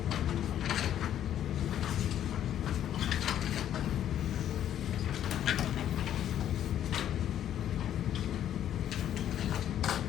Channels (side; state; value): right; quieter; 10.7 dB